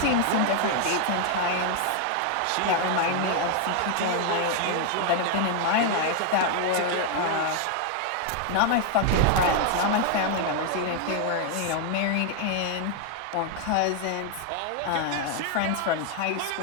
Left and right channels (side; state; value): both; different; correlation 0.00